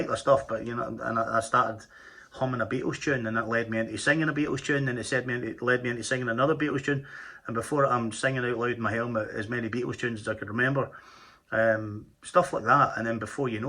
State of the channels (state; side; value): identical; both; correlation 1.00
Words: their stuff, but, you know, and I started humming a Beatles tune, and it led me into singing a Beatles tune, and it led me into singing another Beatles tune, and before I'm singing out loud in my helmet as many Beatles tunes as I could remember, stuff like that, and then before you